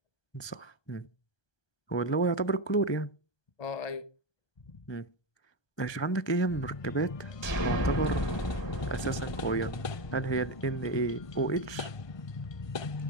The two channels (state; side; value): late; right; 1.2 ms